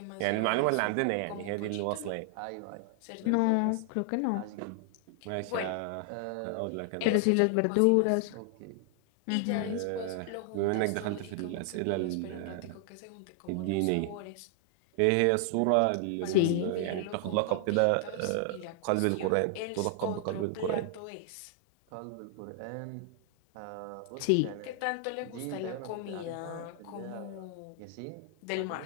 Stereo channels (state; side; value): different; both; correlation 0.00